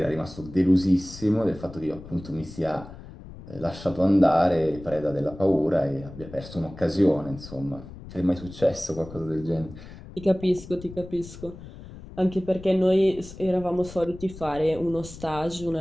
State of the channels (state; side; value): noise; left; rumble, 15 dB below the sound